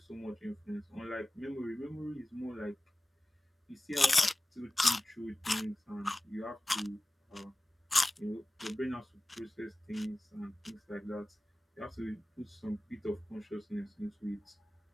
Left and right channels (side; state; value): both; normal; correlation 0.97